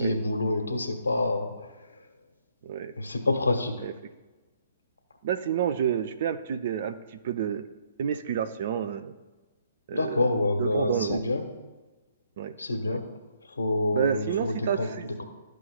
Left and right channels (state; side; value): inverted; both; correlation -0.69